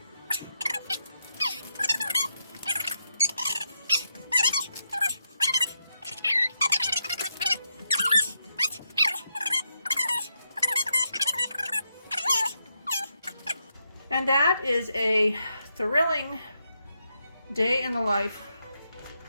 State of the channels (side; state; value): both; inverted; correlation -0.81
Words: And that is a thrilling day in the life